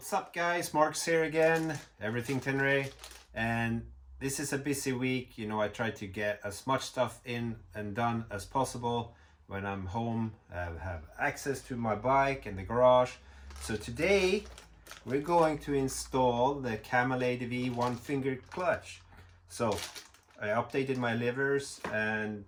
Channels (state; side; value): identical; both; correlation 1.00